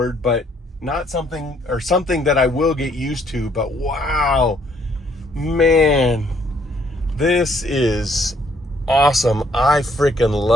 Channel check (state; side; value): normal; both; correlation 0.66